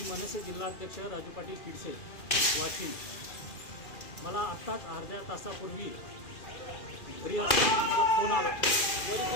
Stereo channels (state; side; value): late; right; 2.4 ms